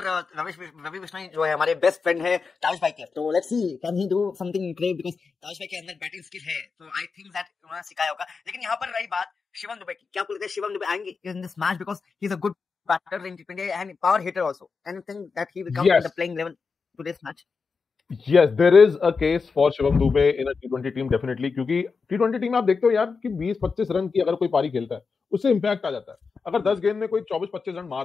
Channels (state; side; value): quieter; right; 4.9 dB